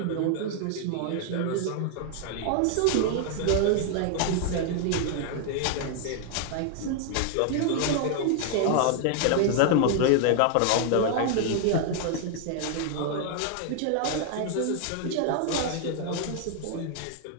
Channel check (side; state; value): both; different; correlation 0.00